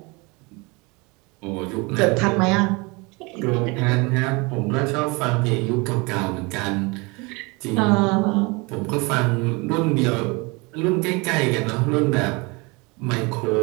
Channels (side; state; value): left; quieter; 27.2 dB